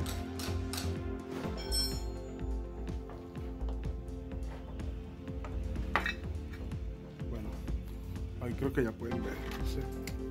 Ahí creo que ya pueden ver. Entonces,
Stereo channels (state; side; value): identical; both; correlation 1.00